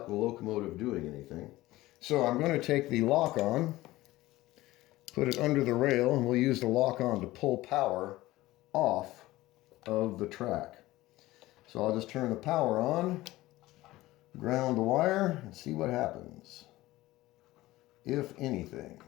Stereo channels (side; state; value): right; quieter; 17.6 dB